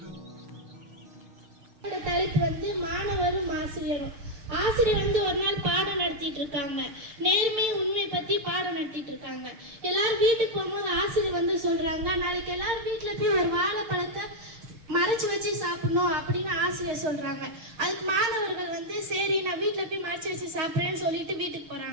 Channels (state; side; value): late; left; 6.5 ms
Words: தலைப்பு மாணவரும் ஆசிரியரும். ஆசிரியர் ஒரு நாள் பாடம் நடத்திட்டு இருக்காங்க. நேர்மை உண்மை பத்தி பாடம் நடத்திட்டு இருக்காங்க. எல்லாரும் வீட்டுக்கு போகும்போது ஆசிரியர் சொல்றாங்க, நாளைக்கு எல்லாரும் வீட்டுல போய் ஒரு வாழைப்பழத்தை மறைச்சு வச்சு சாப்பிடணும் அப்படின்னு ஆசிரியர் சொல்றாங்க. அதுக்கு மாணவர்கள் சரி நான் வீட்டுல போய் மறைச்சு வச்சு சாப்பிட்றேன்னு சொல்லிட்டு வீட்டுக்கு